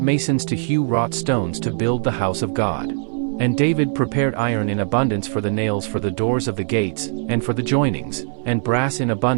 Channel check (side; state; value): left; silent; digital silence